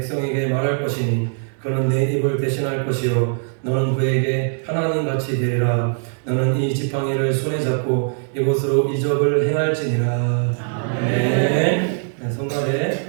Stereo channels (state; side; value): silent; left; 65 dB below the other